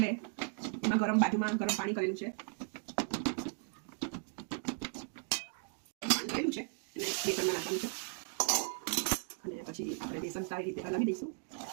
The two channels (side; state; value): left; silent; 53 dB below the other